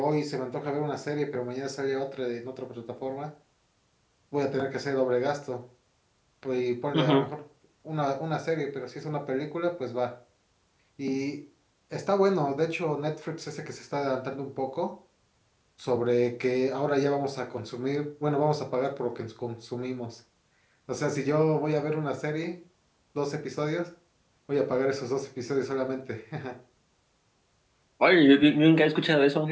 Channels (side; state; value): both; identical; correlation 1.00